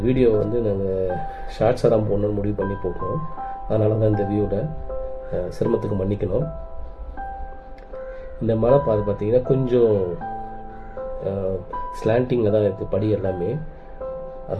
வீடியோவை வந்து நாங்கள் ஷார்ட்ஸாக தான் போடணும்னு முடிவு பண்ணி போட்டோம். அதனால தான் இந்த வியூவில் சிரமத்துக்கு மன்னிக்கணும். இந்த மலை பாதை பார்த்தீங்கன்னா கொஞ்சம் ஸ்லாண்டிங்கில் தான் இருக்குது படி எல்லாமே.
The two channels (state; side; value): identical; both; correlation 1.00